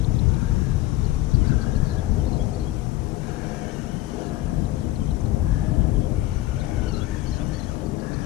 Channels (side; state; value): right; quieter; 16.4 dB